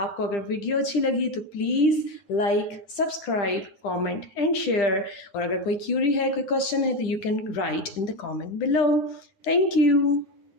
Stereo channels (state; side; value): late; right; 10 ms